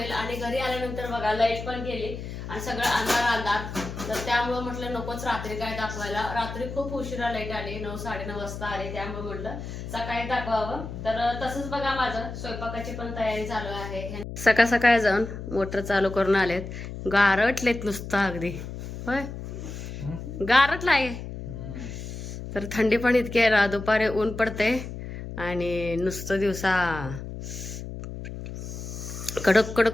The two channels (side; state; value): left; noise; hum, 9 dB below the sound